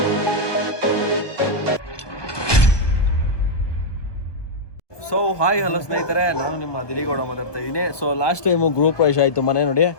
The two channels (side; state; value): right; late; 1.2 ms